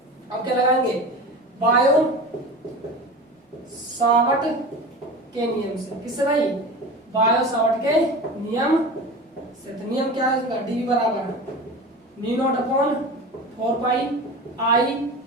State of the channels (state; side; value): normal; both; correlation 0.32